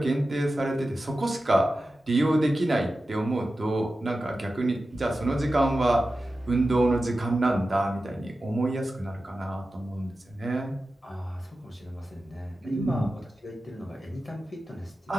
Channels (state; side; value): normal; both; correlation 0.93